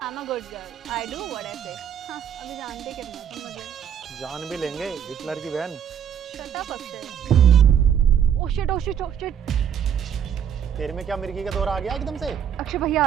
I'm a good girl. I do what I say. हाँ, अभी जानते कितना तुम मुझे। जान भी लेंगे हिटलर की बहन। Shut up Akshay. Oh shit. तेरे में क्या मिर्गी का दौरा आ गया एकदम से? अक्षय भैया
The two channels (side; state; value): left; quieter; 8.7 dB